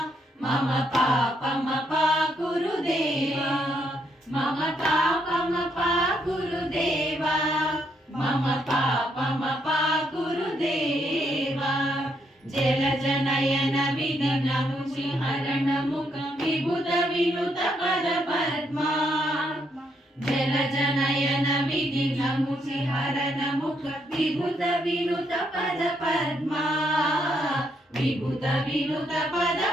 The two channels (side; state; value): both; normal; correlation 0.75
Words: मम पापमपा गुरुदेवा मम पापमपा गुरुदेवा मम पापमपा गुरुदेवा जलजनयन विघ्नमुचिहरण मुख विभुत विनुत पद पद्मा जलजनयन विघ्नमुचिहरण मुख विभुत विनुत पद पद्मा विभुत विनुत पद